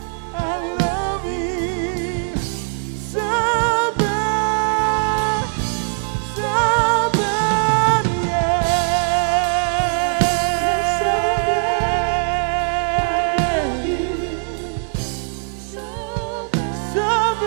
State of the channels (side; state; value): left; silent; digital silence